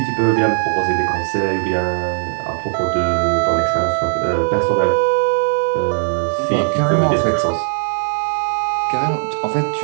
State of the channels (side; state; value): left; silent; 63 dB below the other